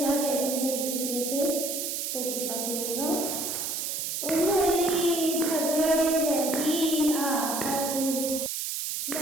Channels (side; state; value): right; noise; hiss, 2 dB below the sound